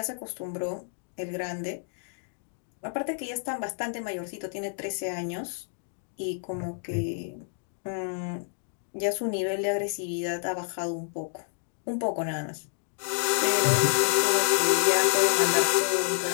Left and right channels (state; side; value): silent; right; digital silence